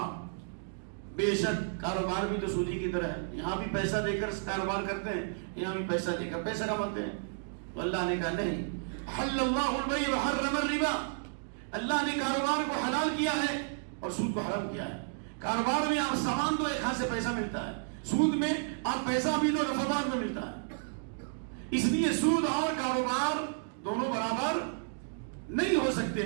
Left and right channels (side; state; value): left; silent; digital silence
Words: بے شک کاروبار بھی تو سودی کی طرح ہے، یہاں بھی پیسہ دے کر کاروبار کرتے ہیں، یہاں بھی پیسہ دے کر پیسہ کماتے ہیں. تو اللہ نے کہا نہیں، حل اللہ البیع وحرم الربا، اللہ نے کاروبار کو حلال کیا ہے اور سود کو حرام کیا ہے. کاروبار میں آپ سامان دو، ایک ہاتھ سے پیسہ ملتا ہے، سود میں آپ پیسہ بھی دو، نفع بعد میں ملتا ہے. اس لیے سود اور کاروبار دونوں برابر نہیں ہو سکتے